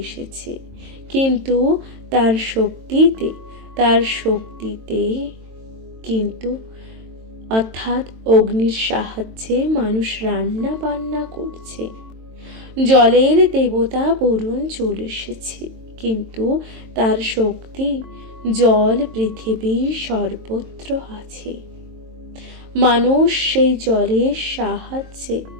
এসেছে, কিন্তু তার শক্তিতে কিন্তু অর্থাৎ অগ্নির সাহায্যে মানুষ রান্না বান্না করছে। জলের দেবতা বরুণ চলে এসেছে, কিন্তু তার শক্তি জল পৃথিবীর সর্বত্র আছে। মানুষ সেই জলের সাহায্যে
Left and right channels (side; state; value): left; late; 22 ms